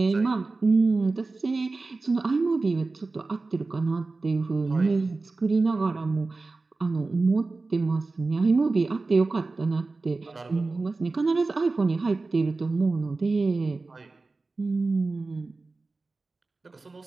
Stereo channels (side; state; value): left; quieter; 3.6 dB